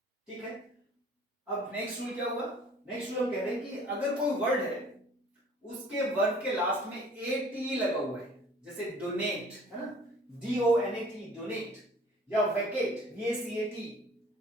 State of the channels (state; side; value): normal; both; correlation 0.52